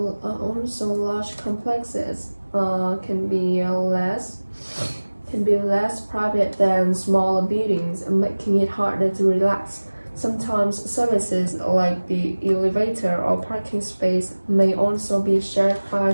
large complexes can be less private than smaller buildings, making it harder to relax. Sometimes services like the elevator or parking space may also be shared by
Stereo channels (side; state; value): both; inverted; correlation -1.00